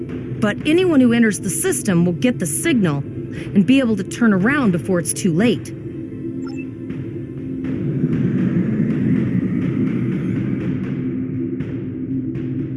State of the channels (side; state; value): both; identical; correlation 1.00